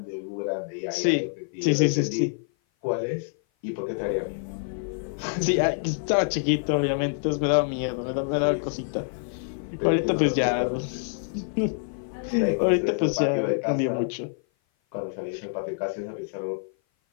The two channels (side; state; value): right; silent; 56 dB below the other